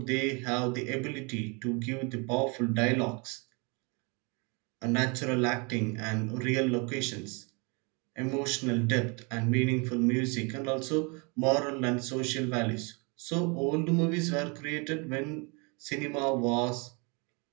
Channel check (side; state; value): left; quieter; 31.4 dB